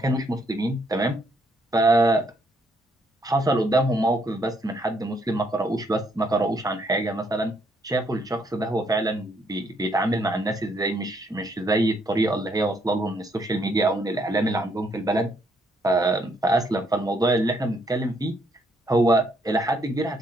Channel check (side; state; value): both; normal; correlation 0.71